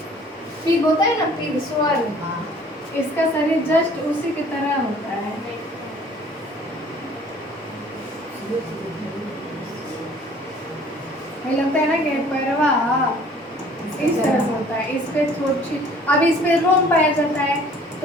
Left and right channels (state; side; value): normal; both; correlation 0.53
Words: पिग होता है ना, पिग स्वर, इसका शरीर जस्ट उसी की तरह होता है। हमें लगता है ना कि पैरवा इस तरह से होता है, इस पे थोड़ी, अब इसमें रोम पाया जाता है।